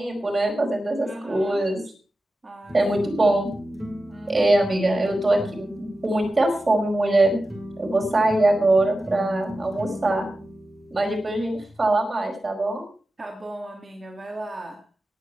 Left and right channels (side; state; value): both; normal; correlation 0.93